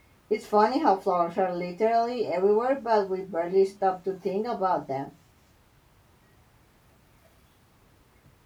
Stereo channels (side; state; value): both; identical; correlation 1.00